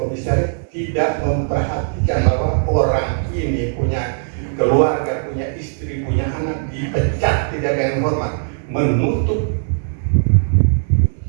komisaris tidak memperhatikan bahwa orang ini punya keluarga, punya istri, punya anak, dipecat tidak ada yang hormat, menutup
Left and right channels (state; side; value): silent; left; 67 dB below the other